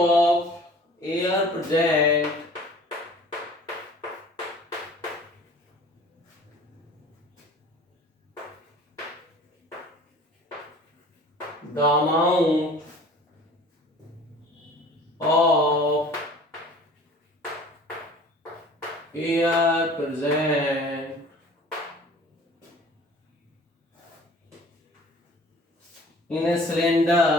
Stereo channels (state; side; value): normal; both; correlation 0.47